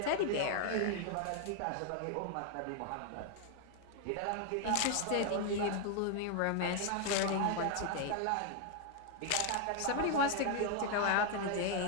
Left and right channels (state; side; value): different; both; correlation 0.00